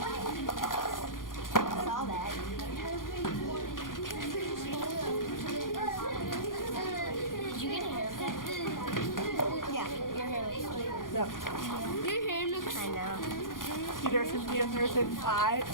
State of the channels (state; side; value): late; right; 0.90 ms